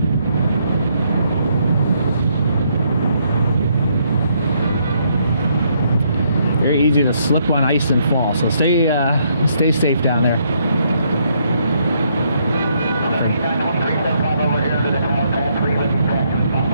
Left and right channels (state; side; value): inverted; both; correlation -0.72